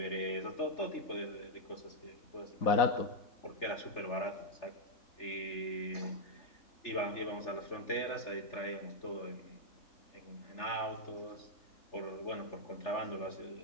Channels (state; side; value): late; right; 3.4 ms